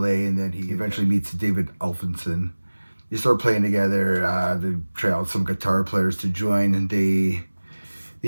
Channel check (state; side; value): inverted; both; correlation -1.00